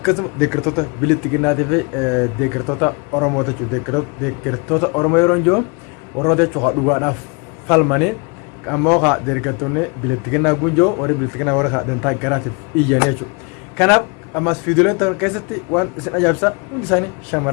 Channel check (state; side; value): quieter; right; 31.6 dB